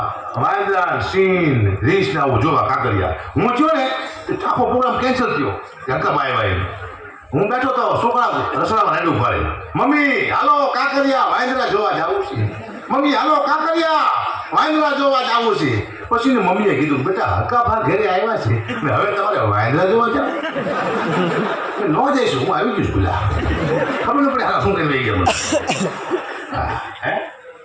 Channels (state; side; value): identical; both; correlation 1.00